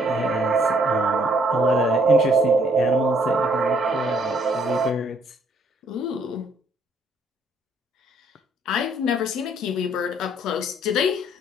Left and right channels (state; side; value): normal; both; correlation 0.65